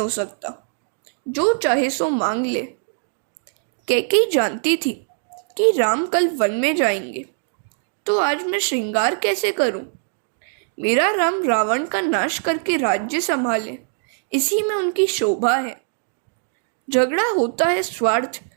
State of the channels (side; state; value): left; silent; digital silence